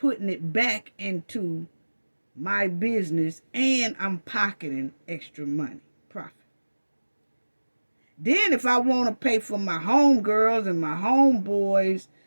it back into my business, and I'm pocketing extra money, profit. Then if I want to pay for my homegirls and my homeboys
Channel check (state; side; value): inverted; both; correlation -1.00